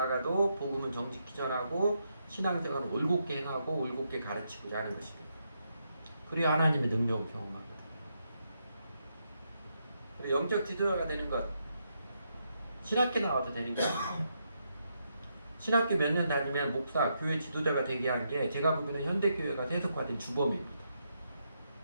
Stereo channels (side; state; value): both; inverted; correlation -0.80